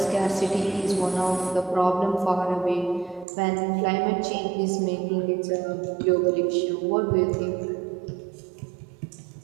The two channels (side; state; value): left; drops out; at 3.2 s